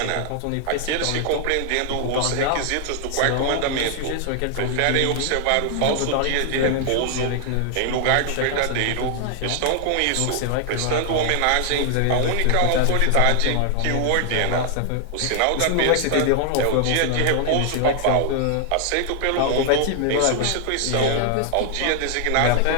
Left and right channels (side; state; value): both; different; correlation 0.00